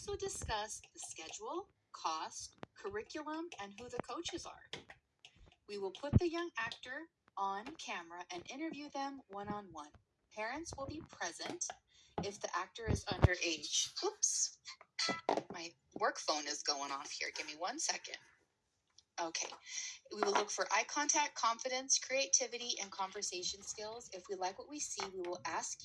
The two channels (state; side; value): identical; both; correlation 1.00